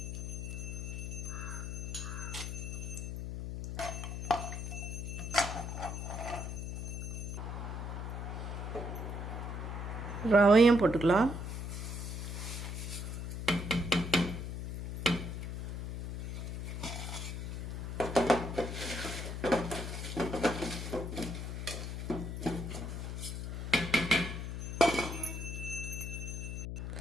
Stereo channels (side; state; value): left; noise; hum, 5 dB below the sound